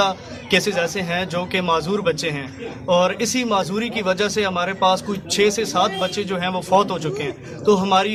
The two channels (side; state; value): both; identical; correlation 1.00